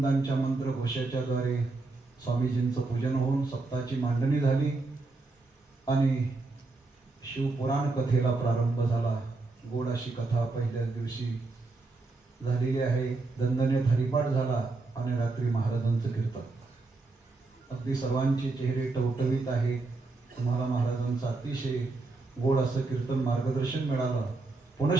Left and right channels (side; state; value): left; quieter; 3.5 dB